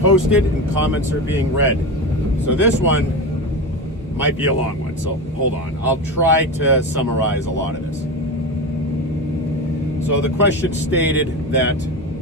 and comments are being read. So this one might be a long one, so hold on. I'll try to summarize a lot of this. So the question stated that,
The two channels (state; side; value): normal; both; correlation 0.22